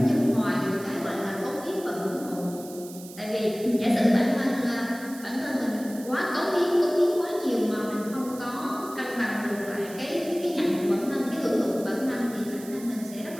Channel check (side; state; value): right; noise; hiss, 17 dB below the sound